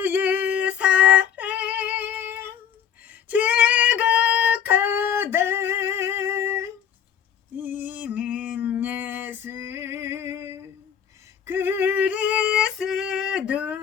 사랑 지극하다 이는 예수 그리스도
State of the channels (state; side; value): quieter; right; 8.8 dB